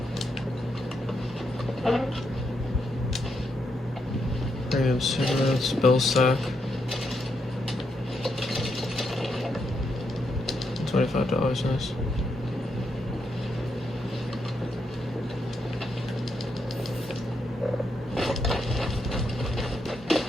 Premium cigarettes, bill sack. $25, nice.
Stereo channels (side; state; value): both; normal; correlation 0.80